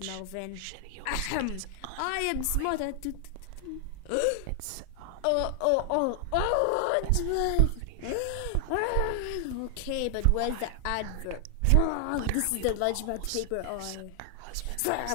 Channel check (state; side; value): different; both; correlation 0.00